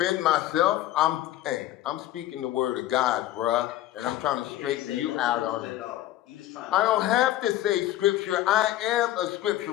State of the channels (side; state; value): right; quieter; 14.1 dB